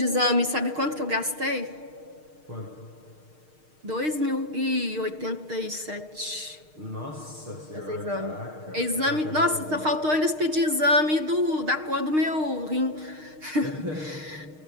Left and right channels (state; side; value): late; left; 6.5 ms